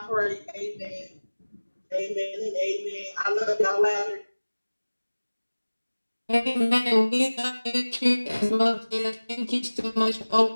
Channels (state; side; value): inverted; both; correlation -1.00